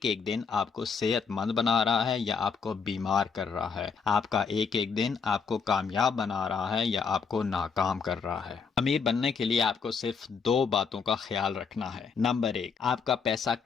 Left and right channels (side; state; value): right; quieter; 5.8 dB